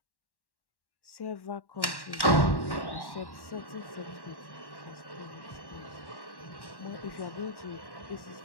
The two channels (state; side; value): late; right; 1.1 ms